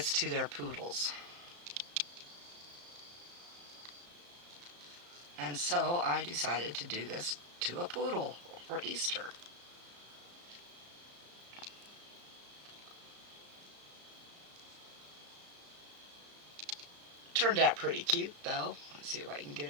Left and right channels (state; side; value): late; left; 34 ms